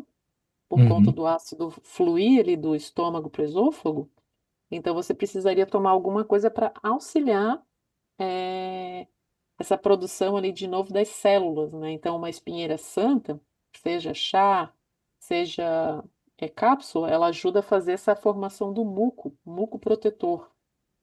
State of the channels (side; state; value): both; identical; correlation 1.00